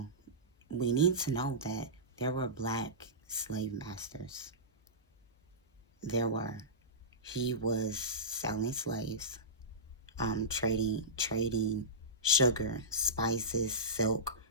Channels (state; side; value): normal; both; correlation -0.18